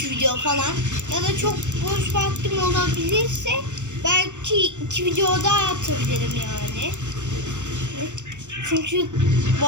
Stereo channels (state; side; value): late; left; 0.85 ms